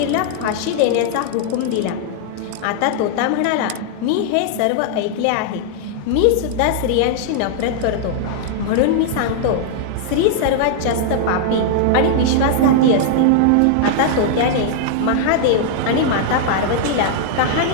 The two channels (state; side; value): different; both; correlation -0.01